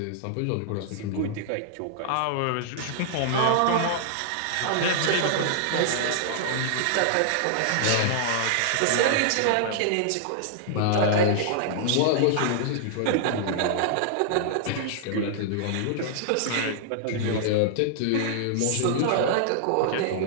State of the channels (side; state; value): both; different; correlation -0.01